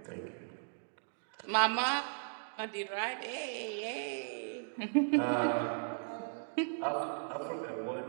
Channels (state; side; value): silent; left; digital silence